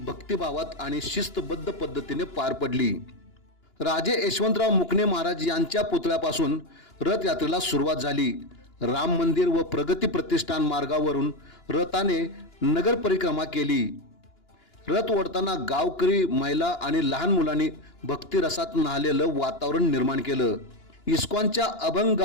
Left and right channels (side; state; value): right; late; 2.9 ms